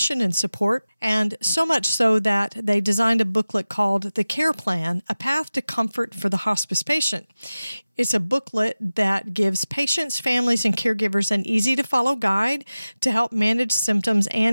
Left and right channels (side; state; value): both; inverted; correlation -0.96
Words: and support, and so much so that they designed a booklet called The Care Plan, A Path to Comfort for the Hospice Patient. It's a booklet that gives patients, families, and caregivers an easy-to-follow guide to help manage symptoms